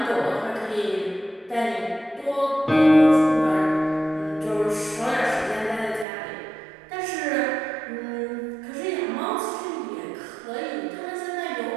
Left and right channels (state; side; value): drops out; left; at 6.1 s